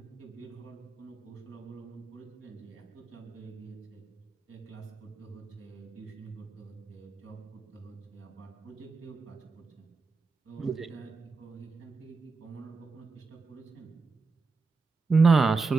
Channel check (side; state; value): left; quieter; 4.3 dB